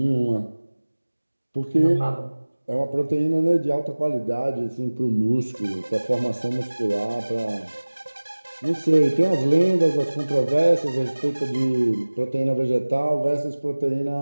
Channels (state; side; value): inverted; both; correlation -1.00